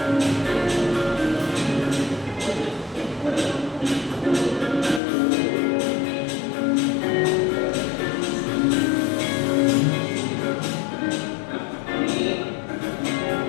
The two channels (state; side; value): drops out; right; at 5.0 s